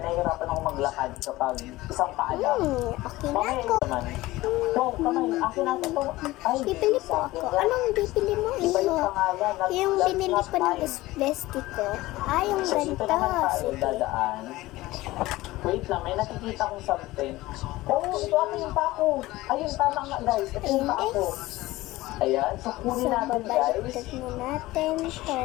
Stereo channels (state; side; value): quieter; right; 18.4 dB